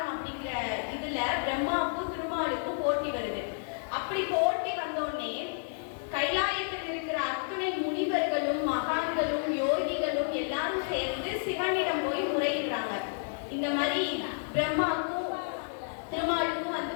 அப்படிங்கிற இதுல பிரம்மாவுக்கும் திருமாலுக்கும் போட்டி வருது. அப்படி போட்டி வந்தோடனே கைலாயத்தில் இருக்கிற அத்துணை முனிவர்களும் மகான்களும் யோகிகளும் எல்லாரும் சேர்ந்து சிவனிடம் போய் முறையிடுறாங்க. இந்த மாதிரி பிரம்மாவுக்கும்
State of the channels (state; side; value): silent; right; 57 dB below the other